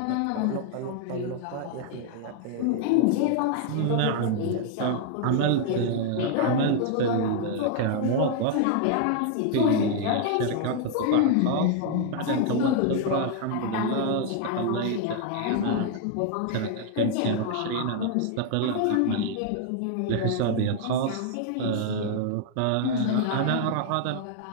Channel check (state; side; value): different; both; correlation 0.00